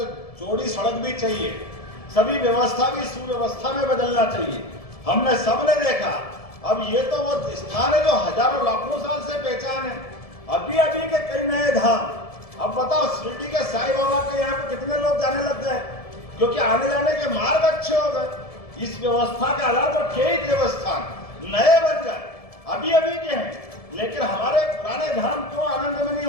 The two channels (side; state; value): right; late; 1.7 ms